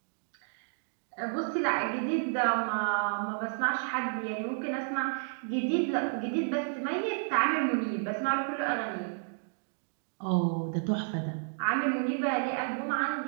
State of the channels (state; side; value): silent; left; digital silence